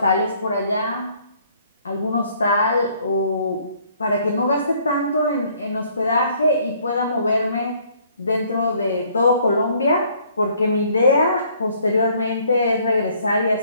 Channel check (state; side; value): inverted; both; correlation -0.62